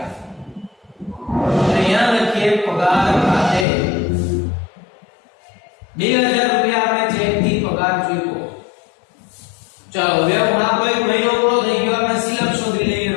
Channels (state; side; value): drops out; right; at 3.7 s